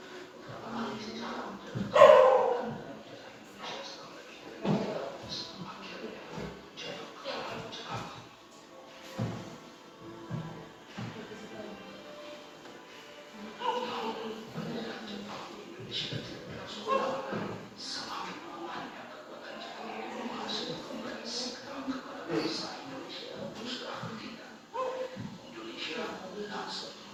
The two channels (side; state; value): both; identical; correlation 1.00